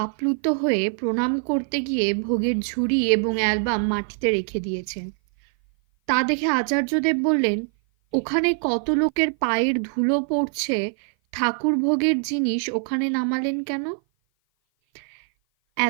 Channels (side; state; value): left; silent; 56 dB below the other